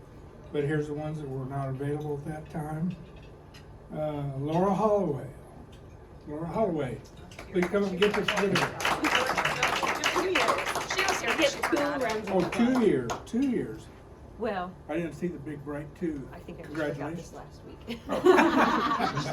But here's the ones that were not available at that time. Laura Holloway. Laura Holloway, please come up and get this certificate. 2 years. She was here. Get 2 rounds. Oh, 2 years, 2 years. Well, I didn't see the big bright 2. I think I forgot this Congratulations. last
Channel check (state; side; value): identical; both; correlation 1.00